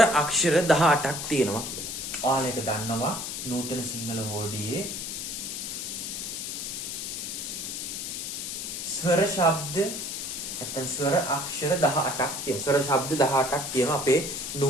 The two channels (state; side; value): noise; left; hiss, 5 dB below the sound